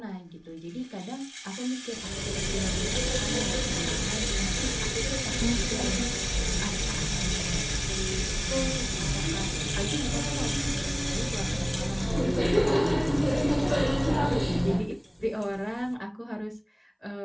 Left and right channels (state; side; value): identical; both; correlation 1.00